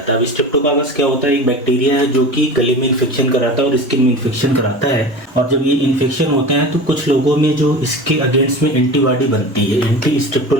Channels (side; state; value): both; normal; correlation 0.33